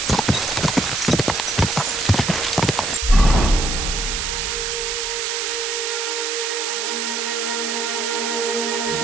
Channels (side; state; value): right; noise; hiss, 1 dB below the sound